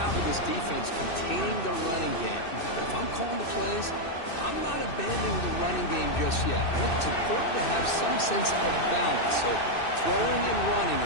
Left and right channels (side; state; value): right; late; 2.6 ms